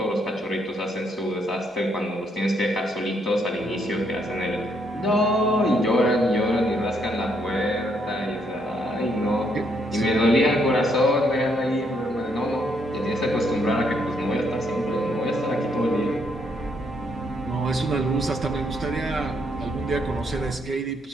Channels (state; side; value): normal; both; correlation 0.73